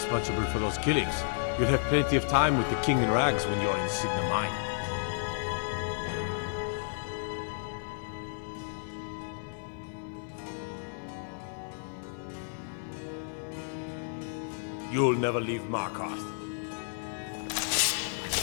for those killings. You'll have plenty of time with the King in Rags when you're in Cidhna Mine. You'll never leave Markarth.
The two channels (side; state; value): right; silent; digital silence